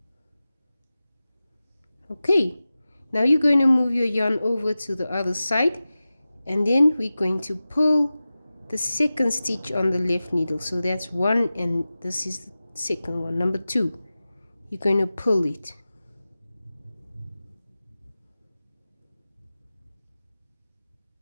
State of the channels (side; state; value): both; inverted; correlation -0.96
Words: Okay, now you're going to move your yarn over to the other side, and then we're going to pull the second stitch on the left needle. So that's one, and this is the second one, number 2. You're going to pull it.